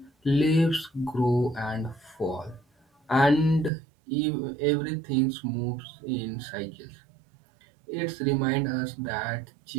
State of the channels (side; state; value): left; drops out; at 3.7 s